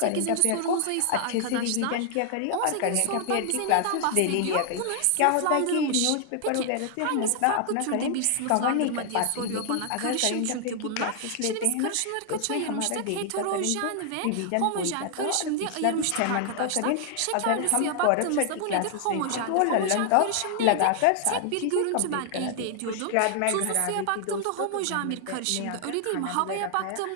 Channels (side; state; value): both; different; correlation 0.00